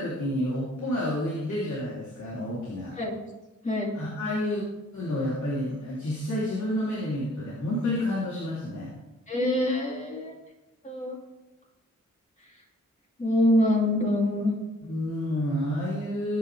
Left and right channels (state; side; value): normal; both; correlation 0.59